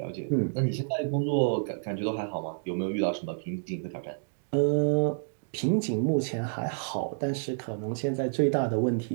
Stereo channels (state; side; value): silent; left; digital silence